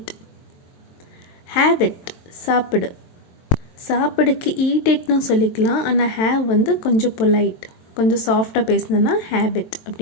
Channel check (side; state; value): right; late; 23 ms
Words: have it, சாப்பிடு. சாப்பிடுக்கு eat itனு சொல்லிக்கலாம். ஆனால் have வந்து கொஞ்சம் பொலைட், கொஞ்சம் சாஃப்டாக பேசினோன்னா have it